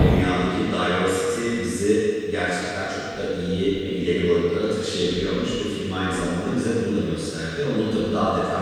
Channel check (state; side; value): identical; both; correlation 1.00